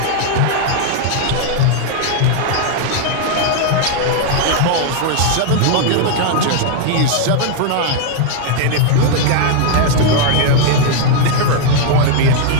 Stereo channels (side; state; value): both; different; correlation 0.00